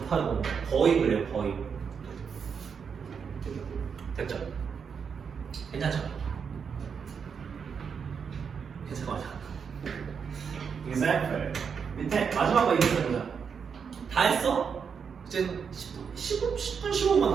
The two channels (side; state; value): left; quieter; 6.5 dB